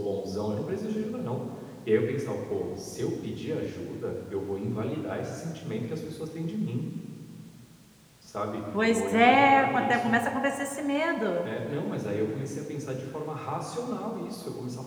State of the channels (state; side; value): identical; both; correlation 1.00